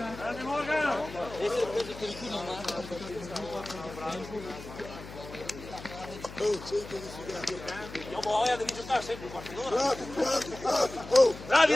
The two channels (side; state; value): left; noise; hum, 14 dB below the sound